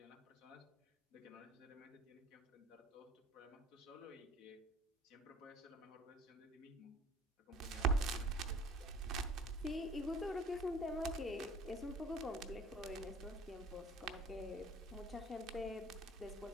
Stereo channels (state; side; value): normal; both; correlation 0.48